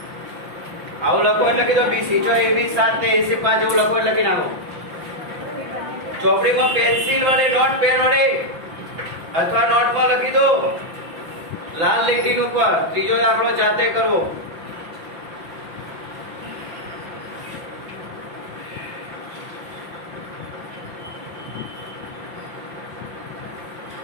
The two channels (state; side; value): late; left; 5.8 ms